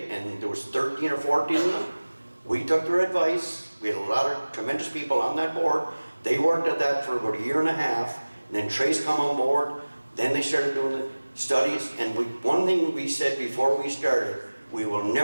and there was 13 or 14 of them. We took their advice. We had a lot of tremendous people on that board. They worked at that for about a year and a half, and then Trace come on board. Then they started doing the studies, and one thing we said before we started, we will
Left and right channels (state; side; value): inverted; both; correlation -1.00